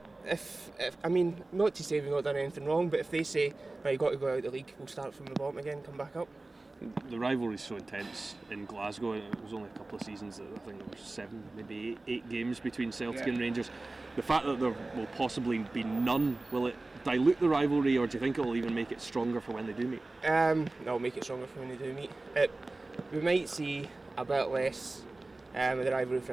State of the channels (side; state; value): left; quieter; 3.1 dB